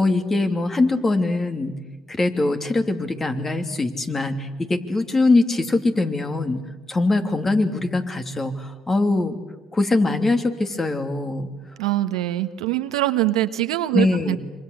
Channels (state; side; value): normal; both; correlation 0.78